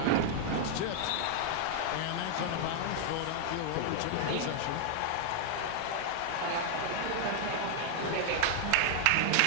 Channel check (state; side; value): different; both; correlation -0.01